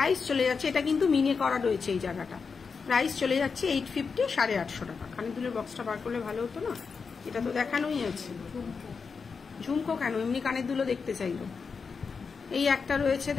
চলে যাচ্ছে, এটা কিন্তু মিনে করা রয়েছে এই জায়গাটা। প্রাইস চলে যাচ্ছে 850, 850 টাকা। কানের দুলের বক্সটা বার করলে ভালো হতো না, এটা তো দেখানোই আছে। ঝুমকো কেন, এমনি কানের দুলো দেখতে চাইলো। এই একটা রয়েছে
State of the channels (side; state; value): right; quieter; 5.3 dB